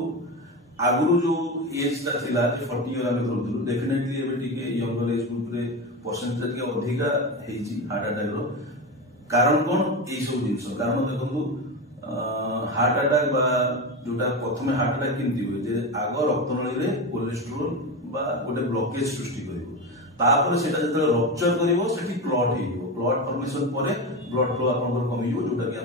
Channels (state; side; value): normal; both; correlation 0.20